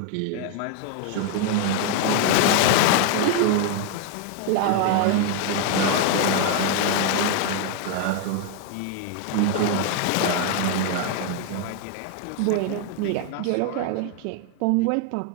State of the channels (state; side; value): different; both; correlation 0.01